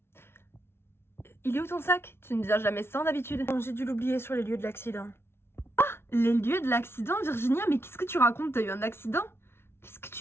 Il est où ton sac? Tu ne viens jamais sans d'habitude. J'ai dû l'oublier sur les lieux de l'accident. Ah, les lieux de l'accident, Virginia? Mais qu'est-ce que tu racontes? T'as eu un accident? Qu'est-ce que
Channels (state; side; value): late; right; 0.12 ms